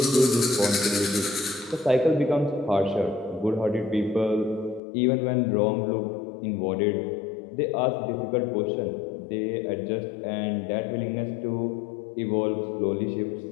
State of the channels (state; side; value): drops out; right; at 4.8 s